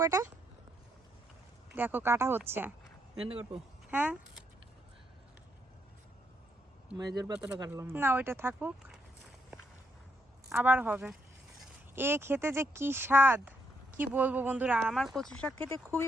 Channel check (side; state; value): both; normal; correlation 0.76